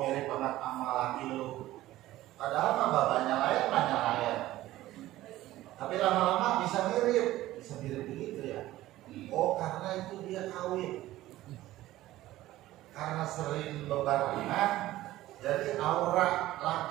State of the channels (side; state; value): left; quieter; 15.7 dB